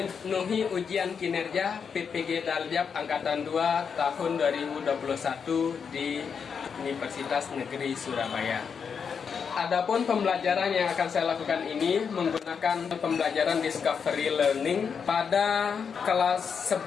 ujian kinerja PPG Daljab Angkatan 2 tahun 2021 di Universitas Negeri Surabaya. Adapun pembelajaran yang akan saya lakukan ini menggunakan pembelajaran Discovery Learning pada kelas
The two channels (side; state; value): right; quieter; 6.4 dB